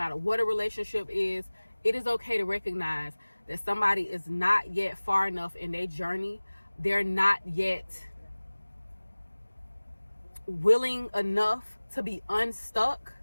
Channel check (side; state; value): both; inverted; correlation -1.00